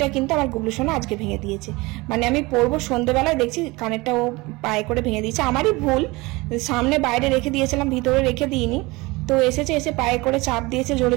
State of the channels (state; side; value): quieter; left; 23.0 dB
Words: কিন্তু আমার গুবলু সোনা আজকে ভেঙে দিয়েছে, মানে আমি পরবো সন্ধ্যেবেলায় দেখছি কানেরটা ও পায়ে করে ভেঙে দিয়েছে। আমারই ভুল, সামনে বাইরে রেখে দিয়েছিলাম, ভিতরে রেখে দিইনি, তো এসে পায়ে করে চাপ দিয়েছে